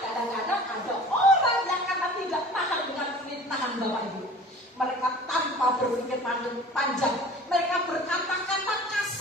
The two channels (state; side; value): normal; both; correlation 0.43